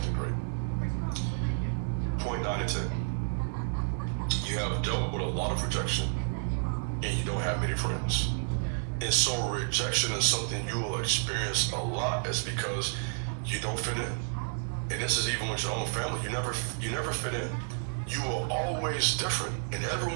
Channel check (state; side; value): silent; left; 57 dB below the other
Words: great. Point 9 and 10. You have dealt with a lot of rejection, and you don't have many friends. And so rejection is something you will experience a lot is because you don't fit in. And this is even with your own family. You never fit in. You were always different, and